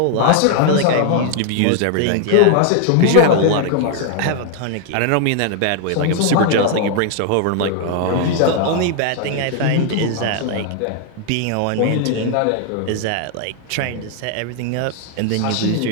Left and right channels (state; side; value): different; both; correlation 0.00